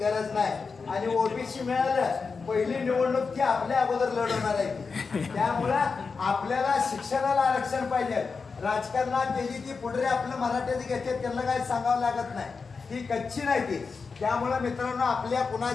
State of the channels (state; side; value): quieter; right; 4.9 dB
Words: नाही आणि ओबीसी मिळालं पहिली निवडणूक ती आपल्या अगोदर लढवणार आहे. त्यामुळं आपल्याला शिक्षणाला आरक्षण पाहिजे. राजकारणात त्याची ती पुढे आपलं मराठ्याची घेते त्यांना काही सांगावं लागत नाही. ती कच्ची नाही ती. त्यामुळे मित्रांनो आपल्या